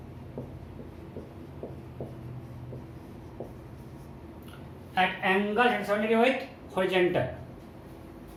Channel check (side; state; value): both; identical; correlation 1.00